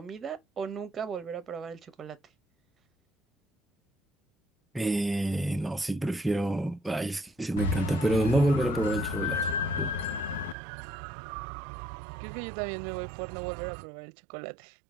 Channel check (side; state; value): left; drops out; at 10.6 s